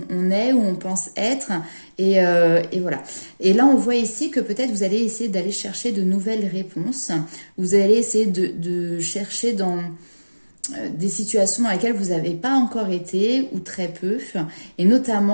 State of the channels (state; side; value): inverted; both; correlation -1.00